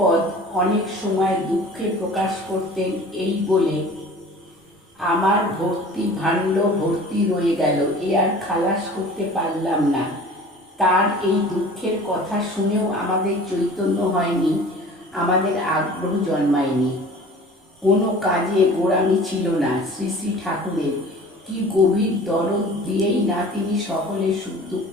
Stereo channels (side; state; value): both; normal; correlation 0.44